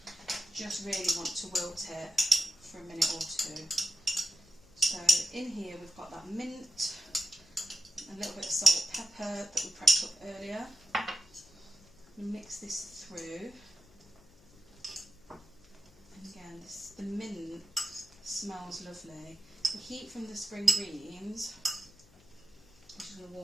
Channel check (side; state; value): left; noise; hum, 27 dB below the sound